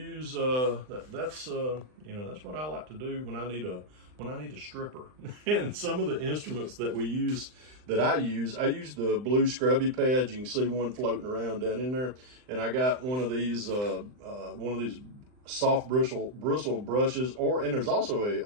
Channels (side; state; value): left; late; 39 ms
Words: That's what I like to do when I need a stripper. And some of the instruments that we use, I use the blue scrubby pads. You can see one floating around down in there. And I got one of these soft bristle brushes, and there's also a